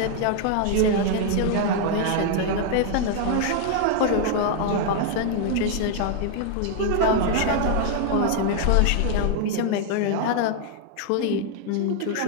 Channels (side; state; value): both; different; correlation 0.00